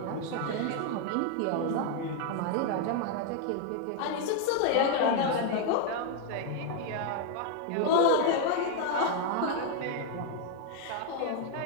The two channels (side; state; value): both; different; correlation 0.01